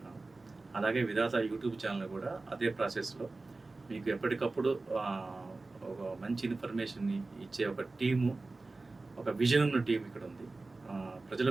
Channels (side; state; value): left; quieter; 3.4 dB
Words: అలాగే విధాత యూట్యూబ్ ఛానల్ కూడా అదే ప్రాసెస్లో మీకు ఎప్పటికప్పుడు ఒక మంచి ఇన్ఫర్మేషన్ని ఇచ్చే ఒక టీము, ఒక విజన్ ఉన్న టీం ఇక్కడ ఉంది. ప్రజల